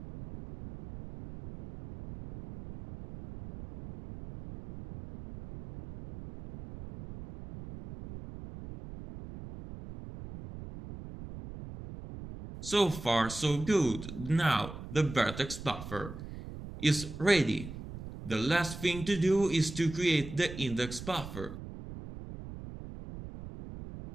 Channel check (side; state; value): right; noise; rumble, 12 dB below the sound